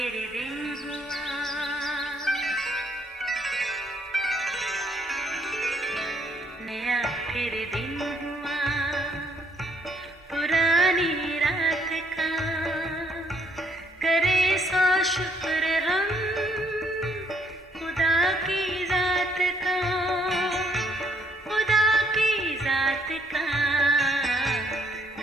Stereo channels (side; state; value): both; normal; correlation 0.68